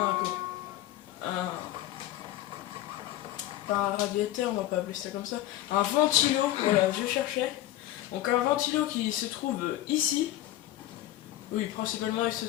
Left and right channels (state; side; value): quieter; right; 14.4 dB